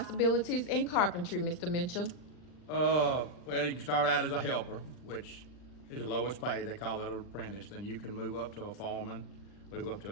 in carpentry, Mr. Mitchell? Well, you can start out as a helper, which is the lowest pay. They call that an apprentice. Then you can move up to a foreman, move up to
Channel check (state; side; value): late; right; 40 ms